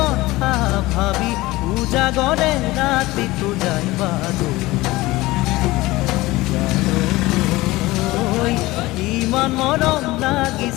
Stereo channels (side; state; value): right; quieter; 19.4 dB